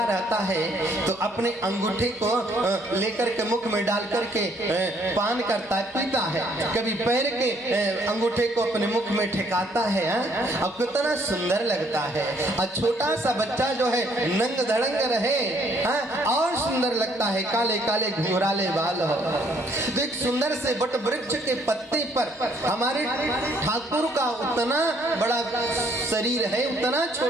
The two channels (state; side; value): normal; both; correlation 0.65